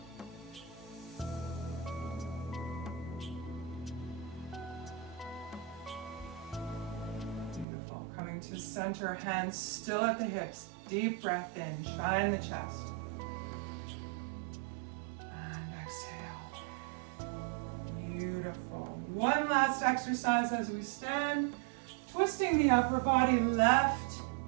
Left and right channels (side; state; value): left; drops out; at 7.7 s